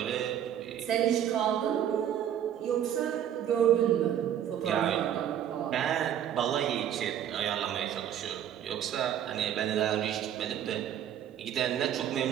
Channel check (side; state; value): left; quieter; 10.2 dB